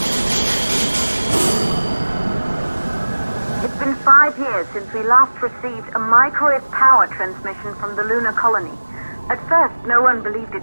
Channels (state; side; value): inverted; both; correlation -1.00